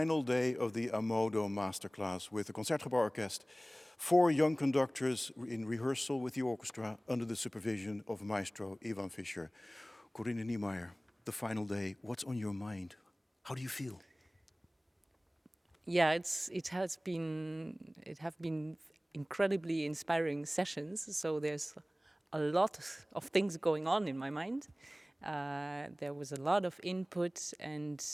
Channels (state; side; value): normal; both; correlation 0.98